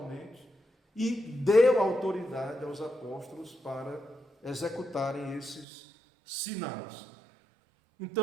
e deu autoridade aos apóstolos para executarem esses sinais.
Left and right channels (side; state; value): left; drops out; at 5.7 s